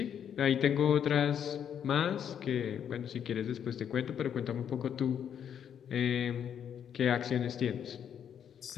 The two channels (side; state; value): right; quieter; 8.7 dB